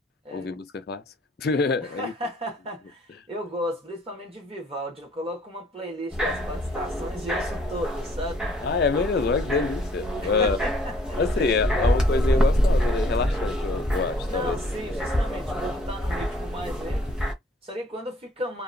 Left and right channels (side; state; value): both; normal; correlation 0.60